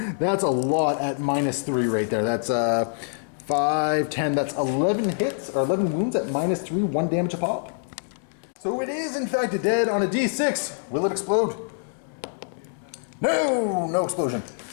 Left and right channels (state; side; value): silent; right; digital silence